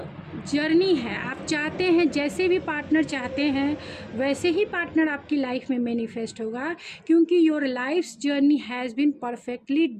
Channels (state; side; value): identical; both; correlation 1.00